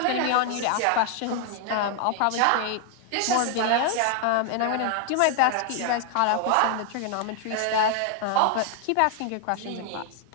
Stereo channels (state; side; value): different; both; correlation 0.00